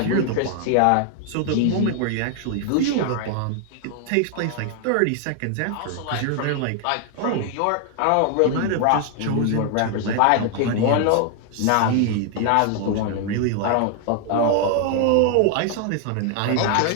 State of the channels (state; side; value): different; both; correlation 0.00